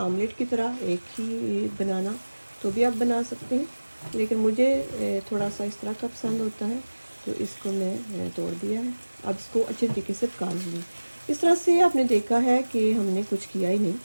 की तरह एक ही बनाना तो भी आप बना सकते हैं, लेकिन मुझे थोड़ा सा इस तरह का पसंद होता है तो इसको मैं तोड़ दिया है। अब इसको अच्छे तरीके से पका लूँगी। इस तरह से आपने देखा है कि हमने कुछ किया ही नहीं।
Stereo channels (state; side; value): inverted; both; correlation -1.00